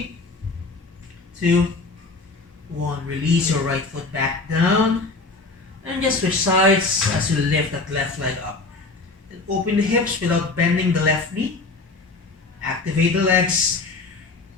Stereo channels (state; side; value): quieter; right; 3.6 dB